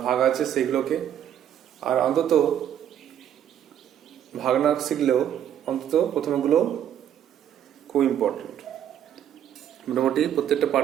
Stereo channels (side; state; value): left; quieter; 10.1 dB